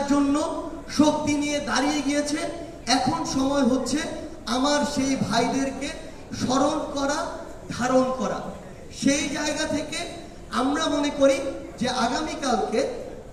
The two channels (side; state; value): both; identical; correlation 1.00